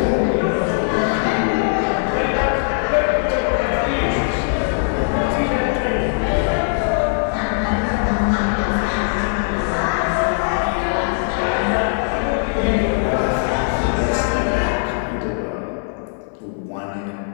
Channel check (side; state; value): right; silent; 62 dB below the other